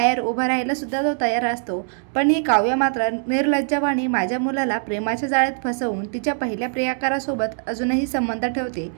उभा राहायला सुद्धा तो तयार असतो, पण ही काव्य मात्र निर्लज्जवाणी माझ्या मुलाला प्रेमाच्या जाळ्यात फसवून तिच्या पहिल्या प्रियकारासोबत अजूनही संबंध ठेवते,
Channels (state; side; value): silent; left; digital silence